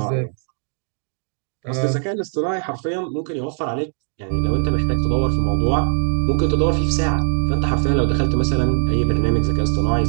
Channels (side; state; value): left; silent; digital silence